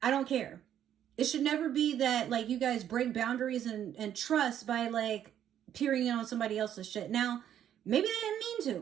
I don't care. It should never be that, like, you guys break boundaries and trust by, like, peering in on somebody else's shit. Now, maybe they didn't mean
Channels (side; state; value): left; quieter; 10.3 dB